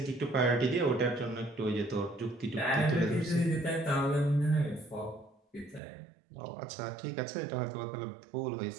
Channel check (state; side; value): drops out; left; at 5.8 s